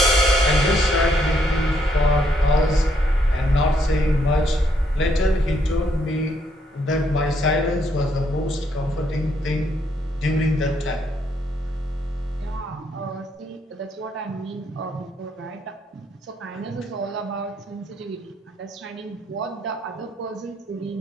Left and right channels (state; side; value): normal; both; correlation 0.72